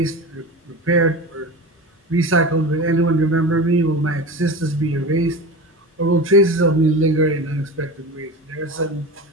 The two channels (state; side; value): normal; both; correlation 0.29